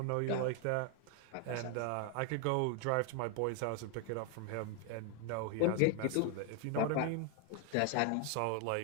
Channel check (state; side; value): different; both; correlation 0.01